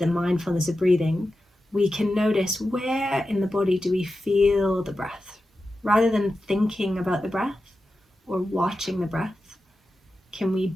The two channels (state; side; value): normal; both; correlation 0.92